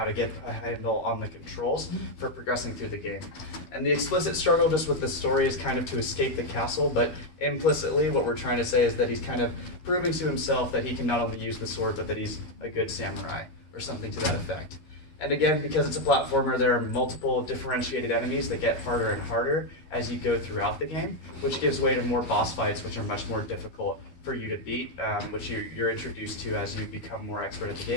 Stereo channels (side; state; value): right; late; 13 ms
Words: to get a handle on the controls for progressing through the game. And the explicit struggle just with the story is kind of to escape the castle, but implicitly what we're trying to say is that he's kind of proving to himself that he can not only use the sword, but that he's a good samurai, or something to that effect. And again, because it's a platformer, there are multiple differentiated enemies that get harder and harder as you go throughout the game, which gives way to more boss fights, which are much more difficult for you to beat, which you're introduced to as you become more expert at the